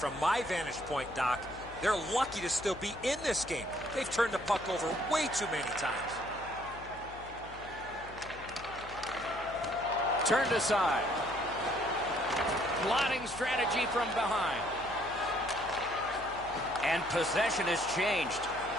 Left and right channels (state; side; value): noise; left; hum, 17 dB below the sound